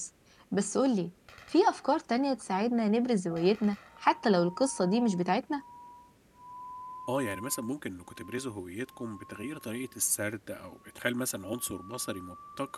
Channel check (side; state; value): both; identical; correlation 1.00